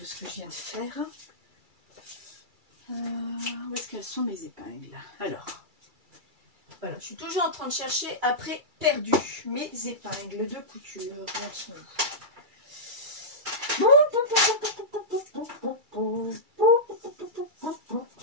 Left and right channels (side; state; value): left; late; 2.3 ms